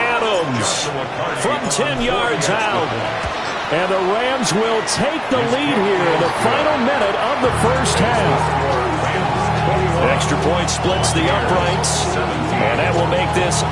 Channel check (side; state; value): both; identical; correlation 1.00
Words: from 10 yards out. And the Rams will take the lead here in the final minute of the first half. Extra point splits the uprights, and that will make this